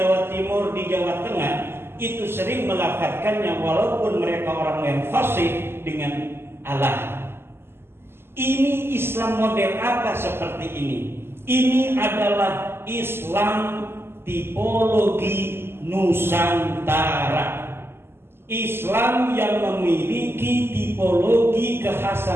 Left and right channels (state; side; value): late; left; 0.12 ms